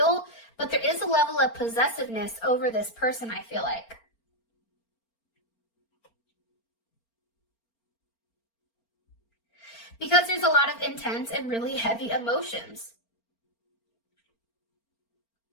but there is a level of possessiveness over this person, I feel like. Because there's a lot of intense and really heavy emotions.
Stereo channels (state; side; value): late; right; 4.4 ms